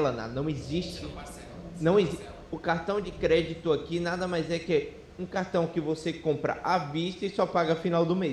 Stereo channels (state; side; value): identical; both; correlation 1.00